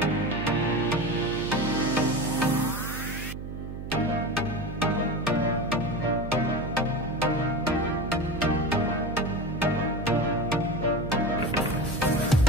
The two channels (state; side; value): noise; right; hum, 8 dB below the sound